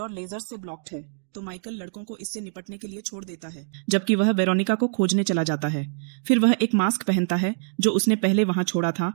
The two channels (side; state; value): left; silent; digital silence